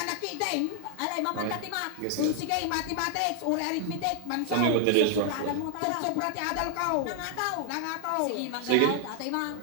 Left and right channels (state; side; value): different; both; correlation 0.00